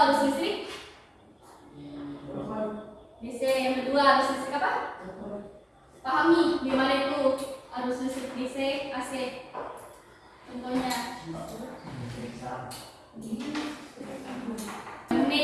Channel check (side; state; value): both; identical; correlation 1.00